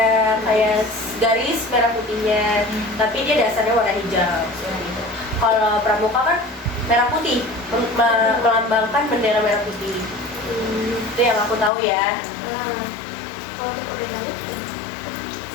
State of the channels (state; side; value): drops out; right; at 11.7 s